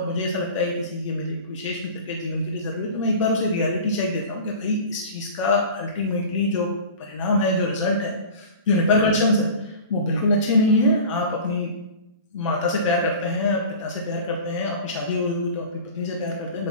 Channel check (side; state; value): both; inverted; correlation -0.37